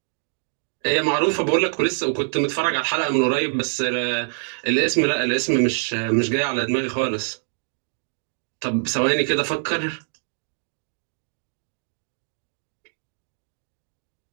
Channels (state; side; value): silent; left; digital silence